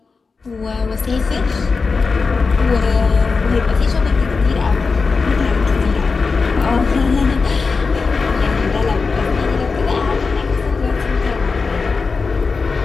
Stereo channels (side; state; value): right; quieter; 4.5 dB